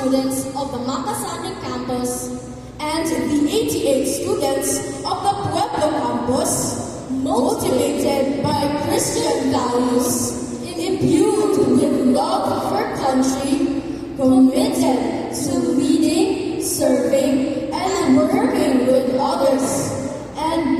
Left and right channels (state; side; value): identical; both; correlation 1.00